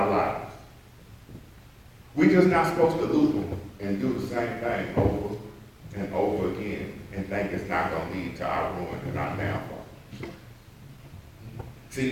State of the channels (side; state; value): both; identical; correlation 1.00